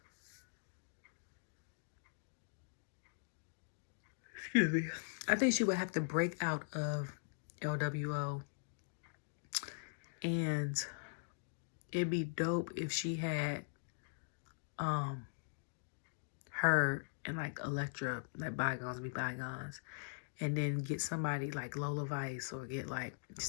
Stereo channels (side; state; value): right; silent; digital silence